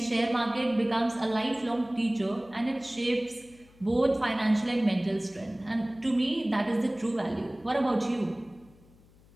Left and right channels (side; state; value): left; noise; hum, 27 dB below the sound